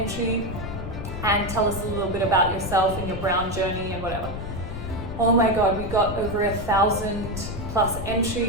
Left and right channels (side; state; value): left; noise; rumble, 7 dB below the sound